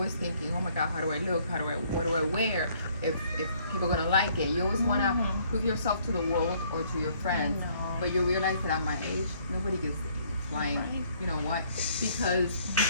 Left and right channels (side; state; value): both; inverted; correlation -0.64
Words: thinking, oh my God, how do I look? What do I wear? If people are gonna like it, you always wanna prove yourself to the world or to your friends. But you realize that at my age, nobody gives flying. Right. You know what?